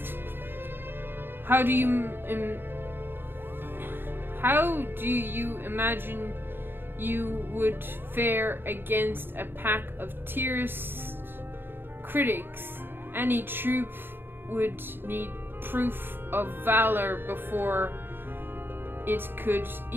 How do you imagine you would fare against a pack of tierce critics? Any troop would need proof of valor before it could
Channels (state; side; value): late; left; 0.10 ms